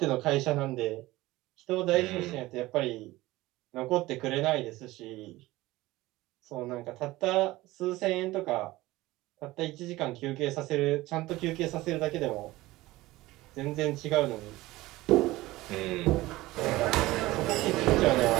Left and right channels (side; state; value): left; quieter; 18.5 dB